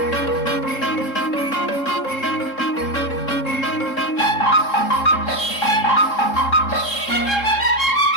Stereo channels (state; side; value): late; right; 3.7 ms